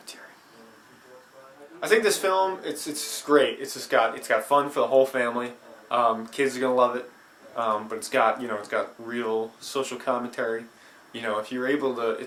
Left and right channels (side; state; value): both; identical; correlation 1.00